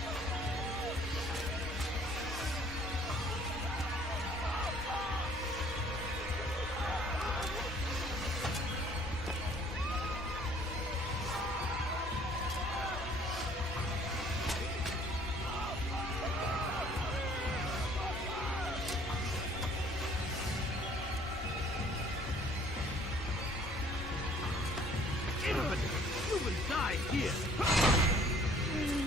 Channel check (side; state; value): both; normal; correlation 0.57